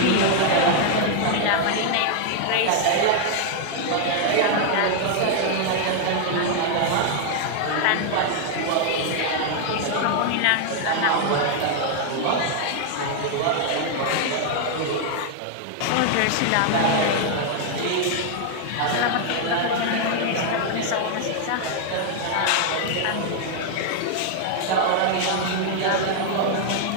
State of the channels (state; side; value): different; both; correlation 0.00